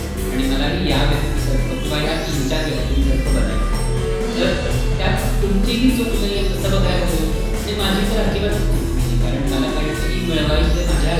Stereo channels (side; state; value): both; identical; correlation 1.00